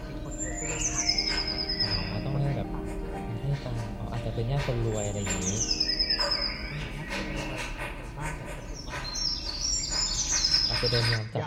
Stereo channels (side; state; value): both; identical; correlation 1.00